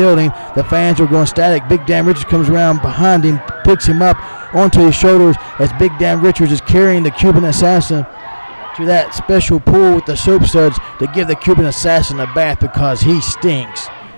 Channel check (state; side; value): inverted; both; correlation -1.00